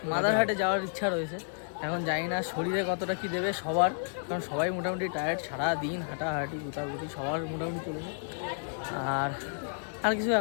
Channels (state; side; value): silent; right; digital silence